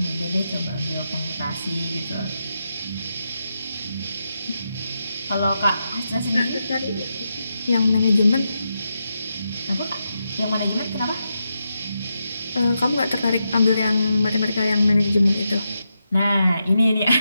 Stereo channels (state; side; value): inverted; both; correlation -0.86